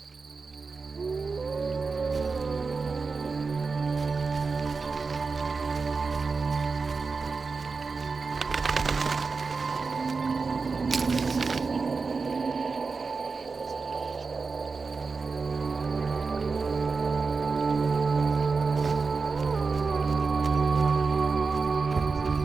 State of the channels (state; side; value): quieter; left; 4.5 dB